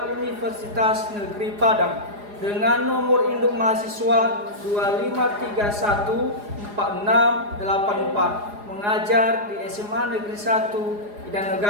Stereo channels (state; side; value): late; left; 4.8 ms